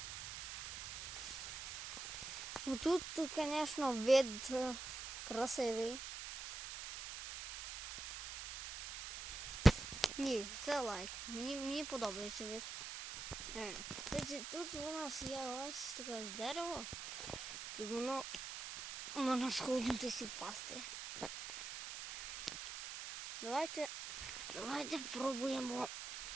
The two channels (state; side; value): noise; right; hiss, 7 dB below the sound